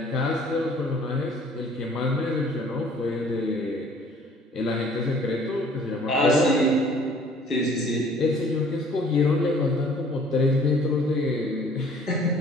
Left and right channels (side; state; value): both; normal; correlation 0.55